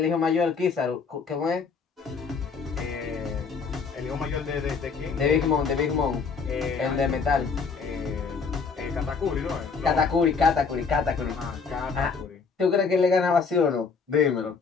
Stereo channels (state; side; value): quieter; right; 5.3 dB